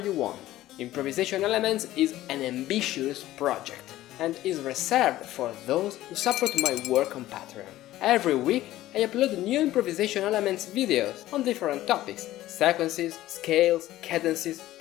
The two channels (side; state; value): right; quieter; 15.1 dB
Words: want. Improvisation Elements is an ambitious project and is reserved for those who support my work on Patreon. Every week I upload new Improvisation Elements videos on different topics, sequences, scales, cadences